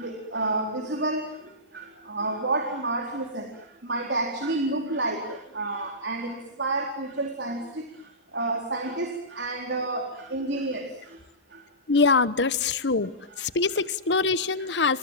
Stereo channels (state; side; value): normal; both; correlation -0.18